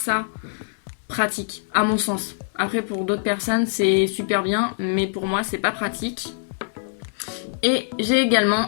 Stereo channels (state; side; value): silent; right; digital silence